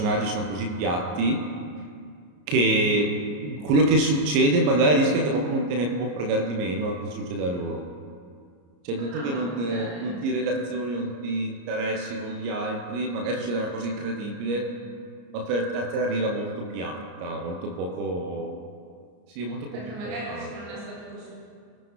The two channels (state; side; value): late; left; 34 ms